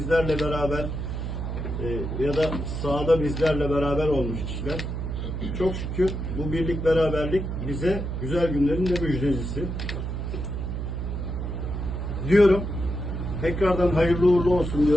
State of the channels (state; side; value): noise; right; hum, 4 dB below the sound